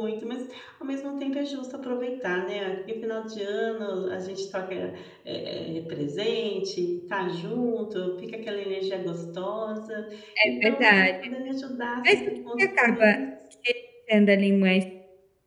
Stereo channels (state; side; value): identical; both; correlation 1.00